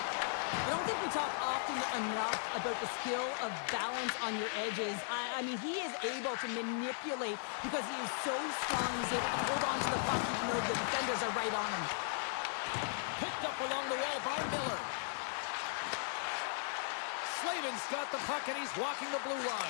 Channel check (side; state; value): right; silent; digital silence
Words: I don't think we talk often enough about the skill of balance on your edges. I mean, he is able to manipulate because he is so strong. He's able to hold on to the puck even though the defenders are right on him. Picked up along the wall by Miller. Slavin's got the puck and he's walking the blue